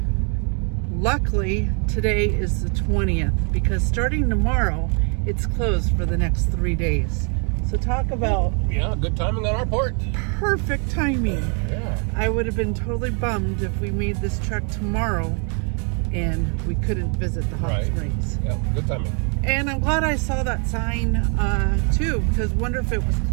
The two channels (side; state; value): left; quieter; 38.9 dB